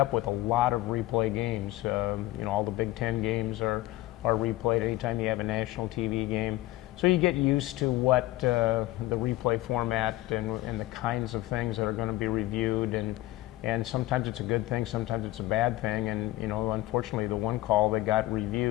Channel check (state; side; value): quieter; right; 17.0 dB